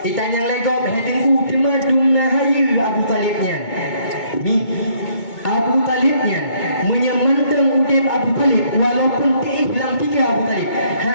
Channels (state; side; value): late; right; 2.2 ms